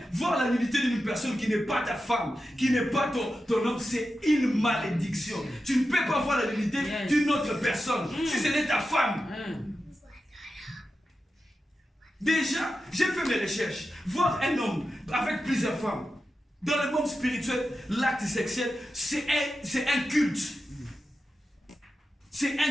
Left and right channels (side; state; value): both; normal; correlation 0.91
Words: voir la nudité d'une personne qui n'est pas ta femme, qui n'est pas ton homme, c'est une malédiction. Tu ne peux pas voir la nudité d'une autre personne si ce n'est ta femme. Déjà, j'ai fait mes recherches. Voir un homme avec plusieurs femmes, dans le monde spirituel, l'acte sexuel, c'est un culte. C'est